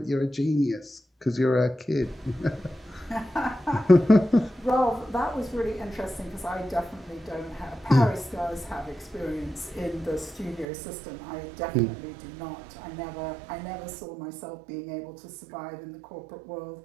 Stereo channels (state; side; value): drops out; left; at 10.7 s